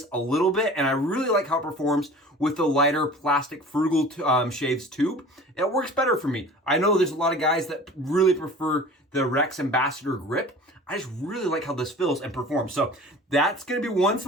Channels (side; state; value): both; normal; correlation 0.42